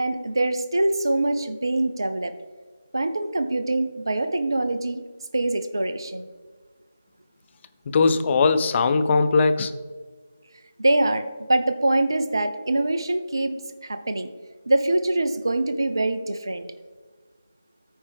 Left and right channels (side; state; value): both; inverted; correlation -0.90